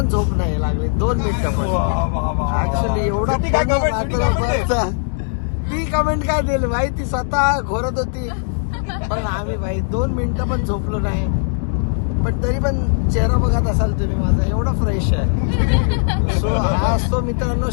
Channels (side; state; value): right; silent; 67 dB below the other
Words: झोप नाही लागली. 2 मिनिटं पण ऍक्च्युली एवढा रात्रभर. ती कमेंट काय दिली भाई ती स्वतः घोरत होती पण आम्ही भाई 2 मिनिटं पण झोपलो नाही. पण तरी पण चेहरा बघत असाल तुम्ही माझा एवढा फ्रेश आहे. सो हा असतो मित्रांनो